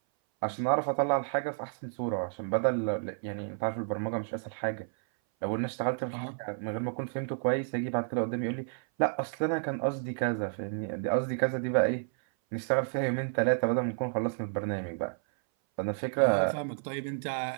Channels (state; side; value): silent; left; 57 dB below the other